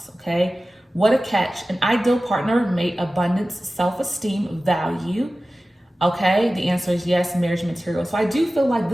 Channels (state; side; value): normal; both; correlation 0.96